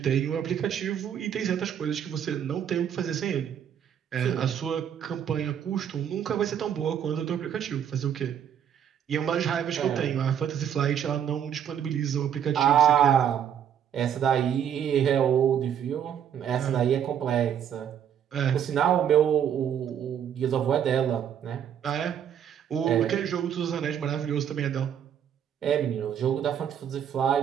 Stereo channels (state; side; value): quieter; left; 9.0 dB